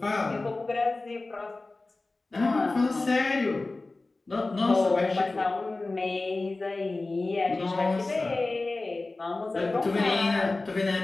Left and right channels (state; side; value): quieter; right; 3.3 dB